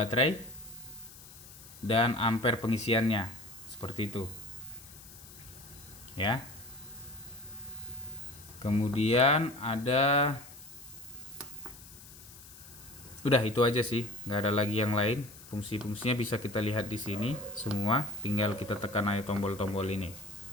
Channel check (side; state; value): left; noise; hiss, 18 dB below the sound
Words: dan ampere pengisiannya, seperti itu ya. Kemudian ada, udah itu aja sih, nggak ada lagi yang lain. Fungsi-fungsinya bisa kita lihat di sini semua, tinggal kita tekan aja tombol-tombol ini